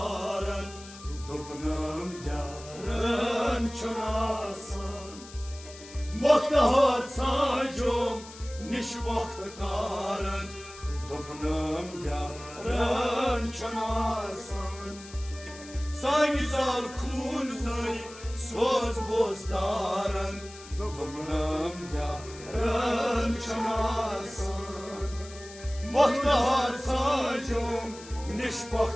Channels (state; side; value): noise; left; hiss, 17 dB below the sound